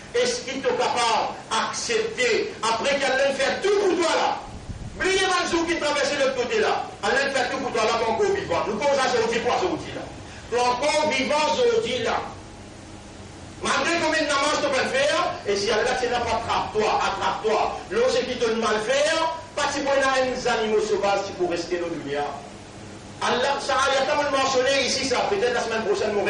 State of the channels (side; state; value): both; identical; correlation 1.00